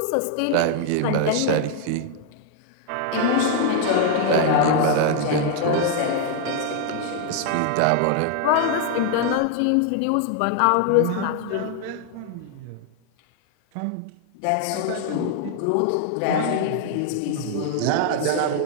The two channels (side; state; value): both; different; correlation 0.00